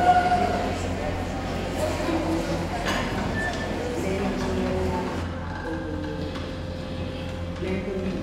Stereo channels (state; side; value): identical; both; correlation 1.00